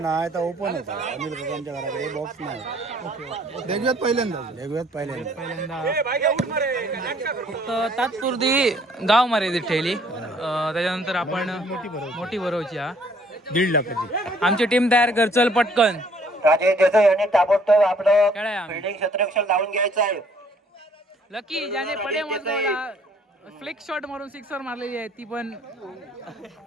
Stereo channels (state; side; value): normal; both; correlation 0.61